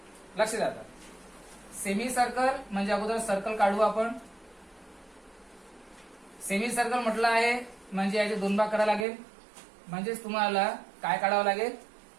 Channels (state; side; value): drops out; left; at 9.1 s